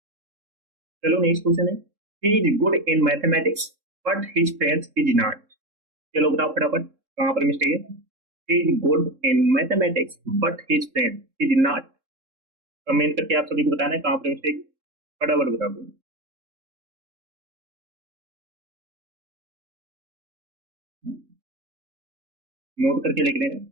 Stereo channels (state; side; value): late; left; 3.7 ms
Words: चलो नेक्स्ट क्वेश्चन है, he is good in mathematics but his friends is not. चलो बताओ फटाफट कहां पर मिस्टेक है। He is good in mathematics but his friend is not. Comment करके आप सभी को बताना है कहां पर मिस्टेक, फटाफट बता दो। नोट करके लिख लेना।